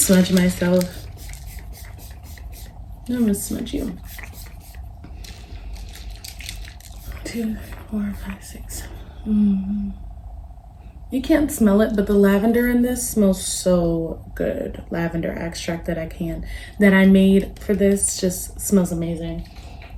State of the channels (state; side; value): identical; both; correlation 1.00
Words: myself. I'm gonna smudge you. 2, 4, 5, 6. You can't smell it, but the lavender in this smells so good. Lavender extract that I made for this just smells amazing.